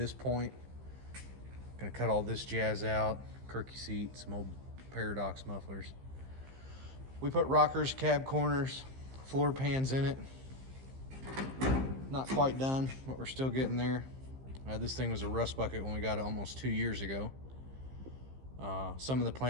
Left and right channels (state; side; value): late; left; 15 ms